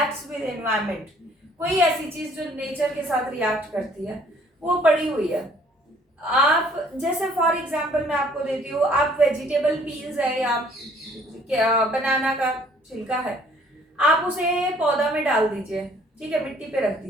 with environment, कोई ऐसी चीज जो नेचर के साथ रिएक्ट करती है वो पड़ी हुई है। आप जैसे फॉर एग्जाम्पल मैं आपको देती हूँ, आप वेजिटेबल पील्स है या बनाना का छिलका है, आप उसे पौधा में डाल दीजिए, ठीक है, मिट्टी पे रख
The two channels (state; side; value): normal; both; correlation 0.59